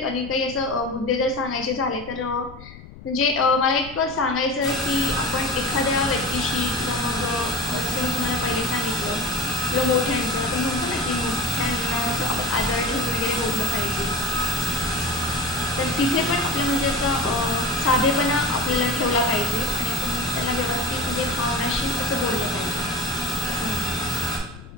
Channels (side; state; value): left; noise; rumble, 17 dB below the sound